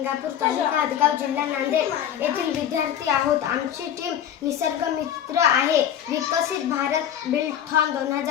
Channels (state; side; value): quieter; right; 9.8 dB